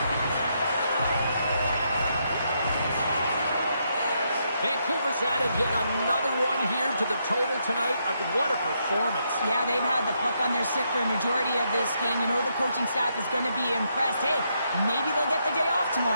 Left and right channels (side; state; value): both; inverted; correlation -0.78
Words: Vancouver's added yet another one here to the total tonight. What a performance. Yeah, they've had the puck on their stick for a majority of this game. You know the coaching staff is going to be impressed. Hey, maybe they'll get the day off